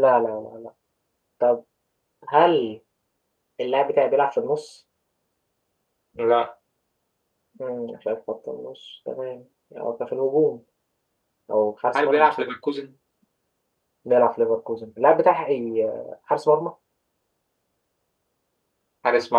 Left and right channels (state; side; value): identical; both; correlation 1.00